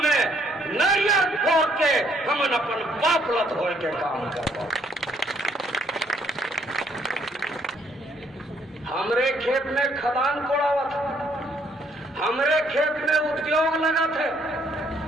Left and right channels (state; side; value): normal; both; correlation 0.67